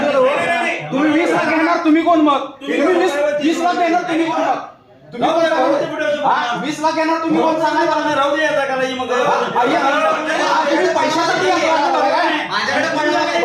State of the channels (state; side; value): identical; both; correlation 1.00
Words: 20 लाख घेणार, तुम्ही कोण? मग तुम्ही 20 लाख घेणार, तुम्ही कोण? मग तुम्ही कोण? 20 लाख घेणार, तुम्ही कोण सांगा? राहू दे आता करायची मग. तुम्ही पैशासाठी माझ्याकडे पण